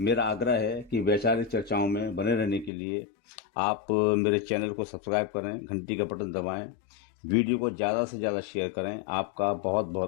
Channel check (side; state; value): right; drops out; at 2.7 s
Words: आग्रह है कि वैचारिक चर्चाओं में बने रहने के लिए आप मेरे चैनल को सब्सक्राइब करें, घंटी का बटन दबाएं, वीडियो को ज़्यादा से ज़्यादा शेयर करें। आपका बहुत